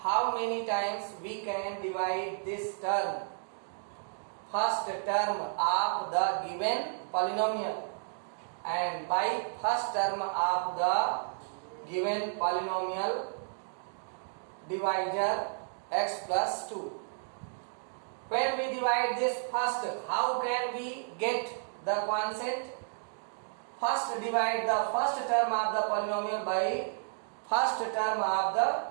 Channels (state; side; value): silent; left; digital silence